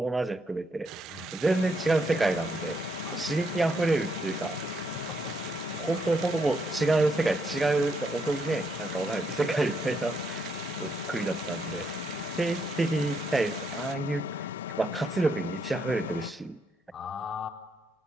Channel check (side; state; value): both; normal; correlation 0.76